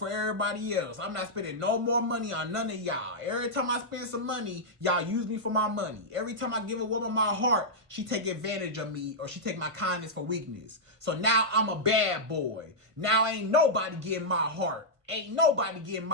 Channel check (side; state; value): left; late; 1.5 ms